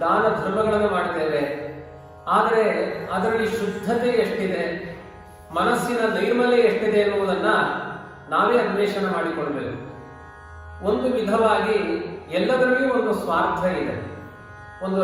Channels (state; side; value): identical; both; correlation 1.00